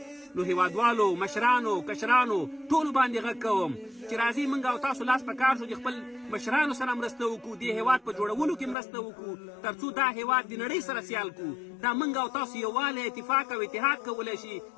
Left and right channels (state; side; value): drops out; right; at 8.8 s